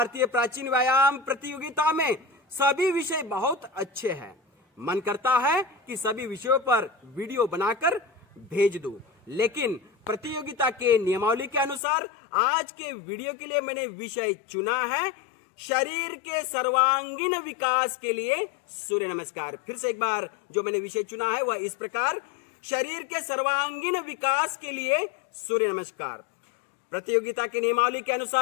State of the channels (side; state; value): right; drops out; at 11.8 s